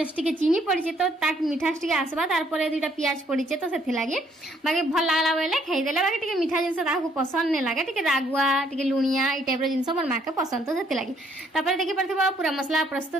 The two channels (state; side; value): normal; both; correlation 0.67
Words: टिके चीनी पड़ी तो ताक मीठास टिके आसबा तार परे दुटा प्याज पड़ी तो सेथि लागि बाकी भल लागला बेले खाइ देला बाकी टिके मीठा ताको पसंद नै लागे टिके रागुआ टिके लुणिया ई टाइप रो जिंस मोर मां के पसंद तो सेति लागि तापर देखि परथिबा पूरा मसला